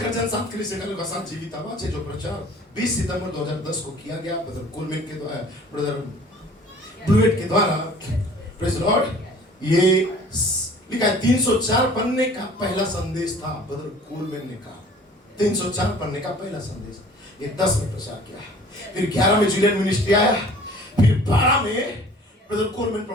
गर्जन, 7 कलीसिया कालों का 7 जीवित आवाज है, जो प्रचार 20 सितंबर 2010 को किया गया ब्रदर कोलमैन के द्वारा, ब्रदर ब्लूएट के द्वारा। Praise Lord. ये लिखा है 304 पन्ने का पहला संदेश था, ब्रदर कोलमैन ने कहा 304 पन्ने का पहला संदेश। ये 10 में प्रचार किया, फिर 11 में जुलियन मिनिस्ट्री आया, फिर 12 में ब्रदर कोलमैन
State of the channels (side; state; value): both; normal; correlation 0.49